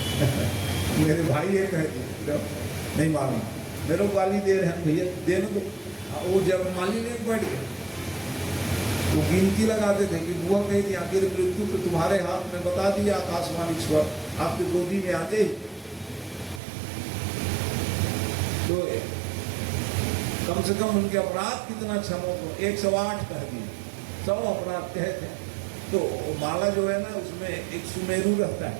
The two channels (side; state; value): left; drops out; at 16.6 s